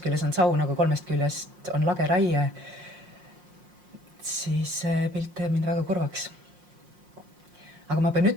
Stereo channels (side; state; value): left; late; 5.6 ms